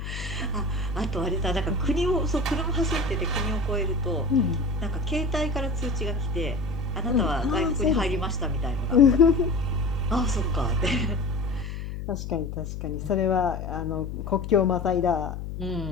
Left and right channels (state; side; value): noise; left; hum, 7 dB below the sound